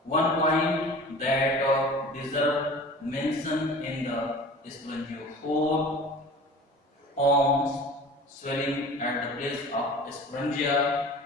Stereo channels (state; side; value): normal; both; correlation 0.41